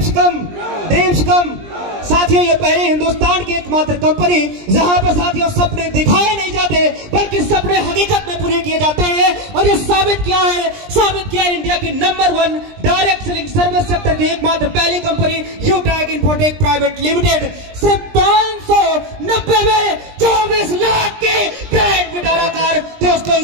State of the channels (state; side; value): late; left; 20 ms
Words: come, dreams come. साथियों ये पहले हिंदुस्तान की एकमात्र कंपनी जहां पर साथियों सपने दिखाए नहीं जाते बल्कि सपने हकीकत में पूरे किए जाते हैं। और ये साबित किया है इंडिया की number 1 direct selling service sector की एकमात्र पहली कंपनी यूटैग इन्फोटेक प्राइवेट लिमिटेड। सिर्फ 590 में 24 लाख की ग्रैंड विटारा कार दोस्तों